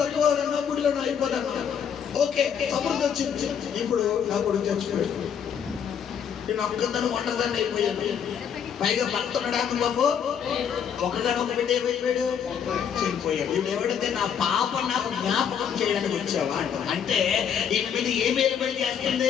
గుడిలో అయిపోతాను. ఓకే, సమృద్ధి వచ్చింది. ఇప్పుడు నా కొడుకు చచ్చిపోయాడు, నేను ఒక్కదాన్ని ఒంటరిదాన్ని అయిపోయాను. పైగా భర్త ఉన్నాడు బాబు, ఒకగానొక బిడ్డ అయిపోయాడు, చనిపోయాడు. ఇప్పుడు ఎవడైతే నా పాప నాకు జ్ఞాపకం చేయడానికి వచ్చావా అంటే ఈయన మీద ఏం ఏలుబడి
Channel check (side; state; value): right; quieter; 7.9 dB